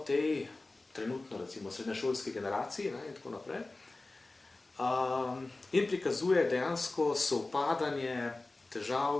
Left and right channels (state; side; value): quieter; right; 3.1 dB